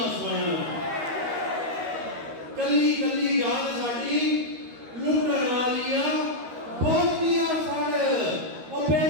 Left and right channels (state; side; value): late; left; 13 ms